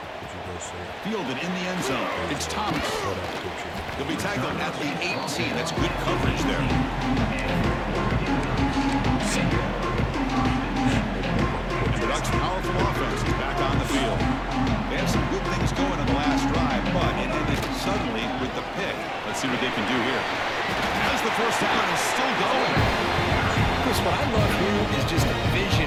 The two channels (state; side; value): identical; both; correlation 1.00